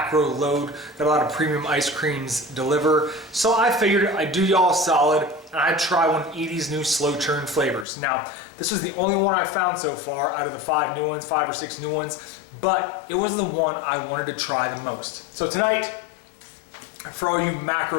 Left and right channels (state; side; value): drops out; right; at 7.9 s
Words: load that a lot of premium ice creams deliver. So I figured I'd do y'all a solid and I'd try one of Edie's new slow churn flavors. Now, this was the only one I found so far out of the 5 or 6 new ones, but it was the one I wanted to try the most. So tonight, for all you